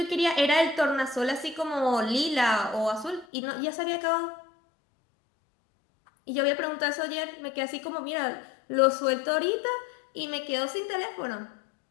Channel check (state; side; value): drops out; right; at 3.2 s